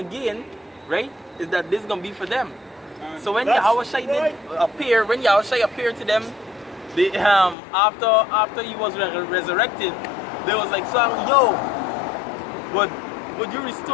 right, is that this is gonna be for them. So when Yahushai did appear, when Yahushai appeared to them, they, after he was resurrected, they was like, so yo, would you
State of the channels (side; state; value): right; drops out; at 7.6 s